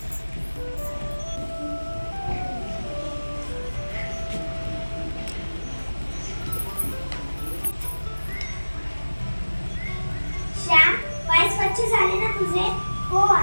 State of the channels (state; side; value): inverted; both; correlation -1.00